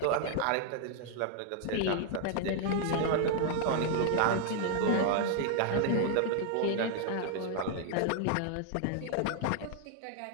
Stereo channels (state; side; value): different; both; correlation 0.00